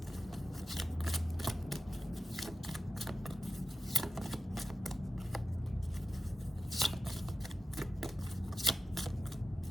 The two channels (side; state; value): both; normal; correlation 0.92